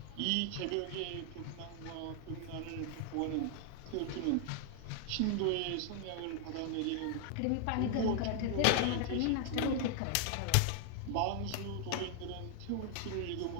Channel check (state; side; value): different; both; correlation 0.00